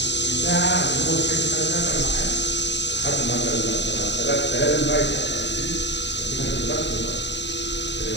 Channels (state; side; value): late; right; 0.51 ms